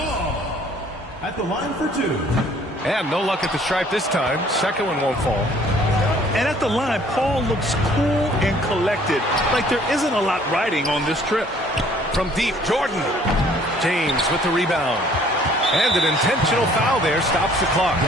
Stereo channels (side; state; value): both; normal; correlation 0.57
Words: At the line for two. And no luck at the stripe this time. Second one won't fall. And at the line, Paul looks cool and collected, like there isn't a lot riding on this trip. From deep, Jordan. James with the rebound. And an intentional foul there stops the clock.